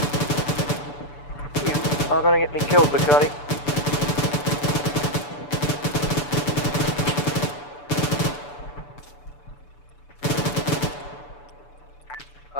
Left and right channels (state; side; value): late; right; 6.9 ms